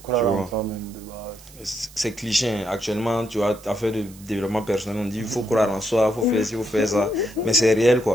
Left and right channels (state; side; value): noise; right; hiss, 21 dB below the sound